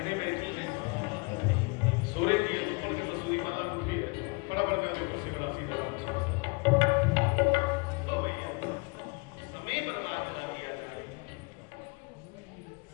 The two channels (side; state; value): right; quieter; 30.4 dB